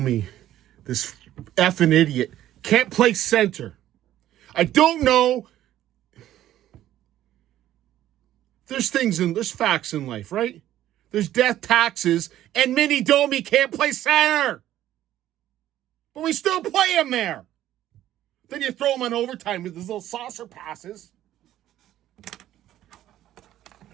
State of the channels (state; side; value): quieter; left; 12.9 dB